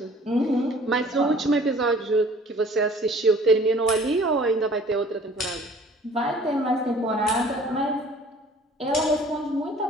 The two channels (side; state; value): both; normal; correlation 0.51